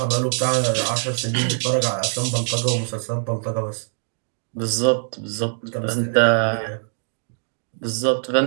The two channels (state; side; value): silent; left; digital silence